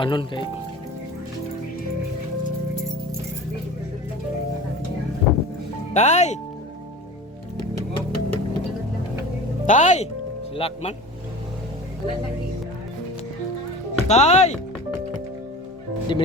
kay Tay! Tay! Silak man. Tay! Di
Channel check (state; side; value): normal; both; correlation 0.36